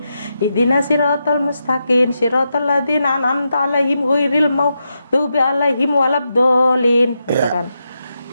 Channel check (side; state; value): both; inverted; correlation -0.85